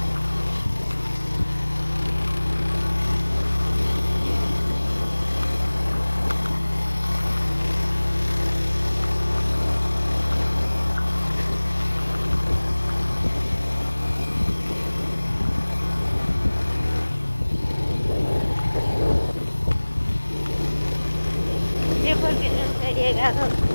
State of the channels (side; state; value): both; inverted; correlation -1.00